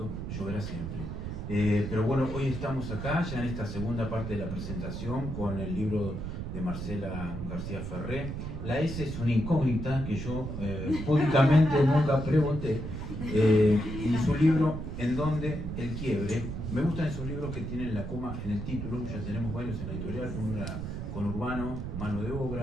lloverá siempre. Pero bueno, hoy estamos acá, ya en esta segunda parte de la presentación, con el libro de Marcela García Ferré. La S es una incógnita que yo públicamente nunca pregunté. Y su libro, En donde el quiebre. Me gustan esos libros que tienen la coma en el título, ya tenemos varios en la editorial, uno con Urbano, Mano de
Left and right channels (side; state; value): right; noise; rumble, 6 dB below the sound